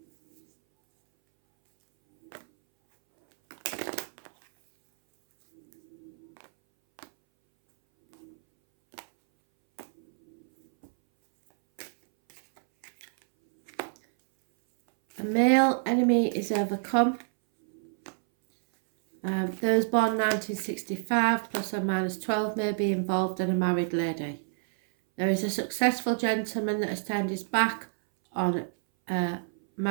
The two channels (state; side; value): silent; left; 59 dB below the other